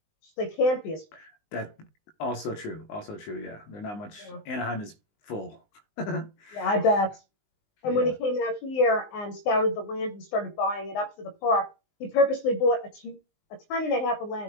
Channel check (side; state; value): right; late; 19 ms